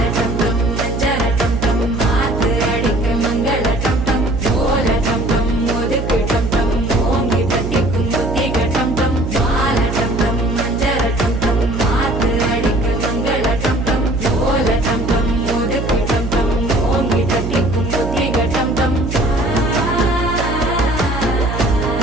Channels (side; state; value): right; noise; hum, 4 dB below the sound